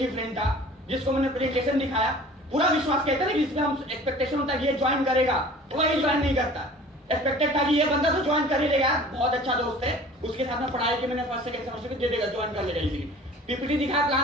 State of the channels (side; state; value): both; normal; correlation 0.45